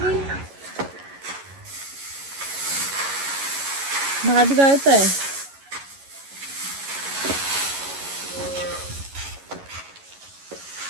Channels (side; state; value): left; late; 11 ms